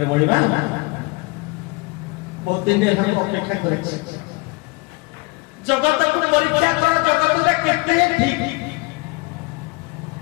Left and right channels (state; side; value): quieter; right; 25.5 dB